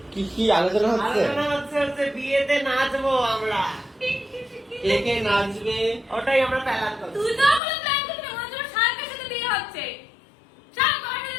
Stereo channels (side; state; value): right; drops out; at 7.6 s